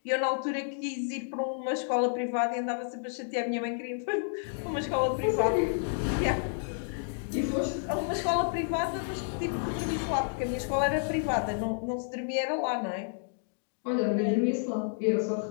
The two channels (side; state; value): right; silent; digital silence